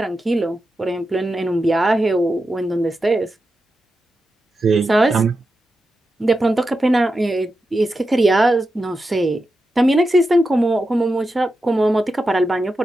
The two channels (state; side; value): normal; both; correlation 0.89